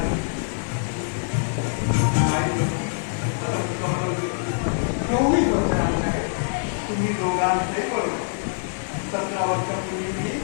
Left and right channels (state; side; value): silent; right; digital silence